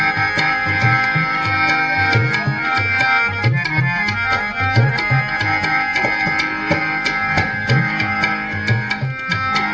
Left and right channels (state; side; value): identical; both; correlation 1.00